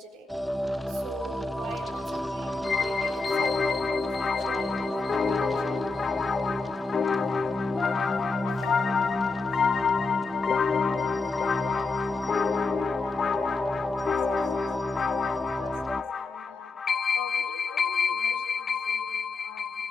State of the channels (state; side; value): quieter; right; 3.8 dB